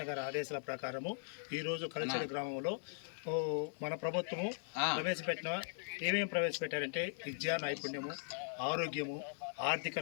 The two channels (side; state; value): right; silent; 51 dB below the other